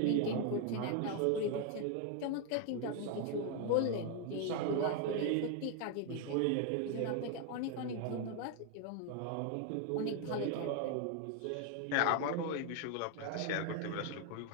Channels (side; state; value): both; different; correlation 0.01